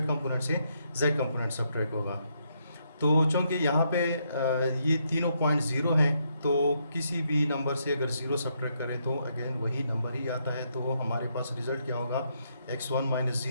कंपोनेंट से जेड कंपोनेंट सब्ट्रैक्ट होगा। तो चूँकि यहाँ पे ये तीनों पॉइंट ज़ीरो हैं, तो किसी भी नंबर से अगर ज़ीरो सब्ट्रैक्ट करें तो अगेन वही नंबर ही आता है। तो हमारे पास रिज़ल्ट क्या होगा, x1 माइनस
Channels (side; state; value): both; inverted; correlation -0.77